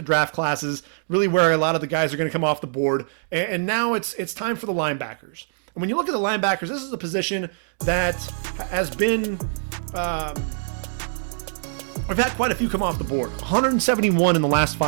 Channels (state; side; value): silent; left; digital silence